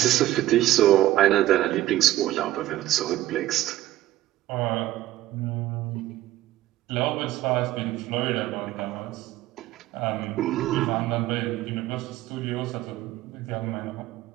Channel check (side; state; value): left; quieter; 15.0 dB